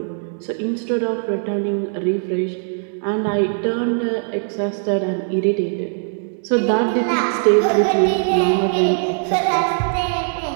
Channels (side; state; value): left; silent; digital silence